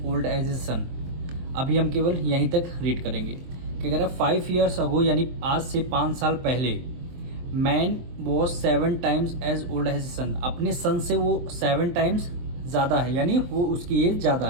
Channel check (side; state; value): left; late; 23 ms